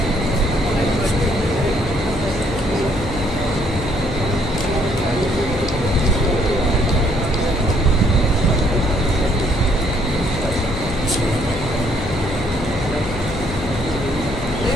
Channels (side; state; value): left; noise; hum, 8 dB below the sound